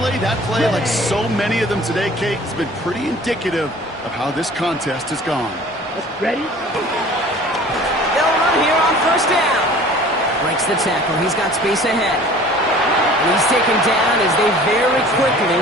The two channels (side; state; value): both; normal; correlation 0.47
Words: that play, like so many of them today, Kate, has been pretty indicative of how this contest has gone. Ready? They'll run here on 1st down. Breaks the tackle. He's got space ahead. And he's taken down as they very quickly